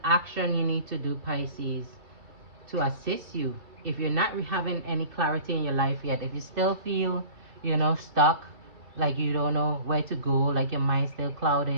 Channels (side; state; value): left; late; 2.8 ms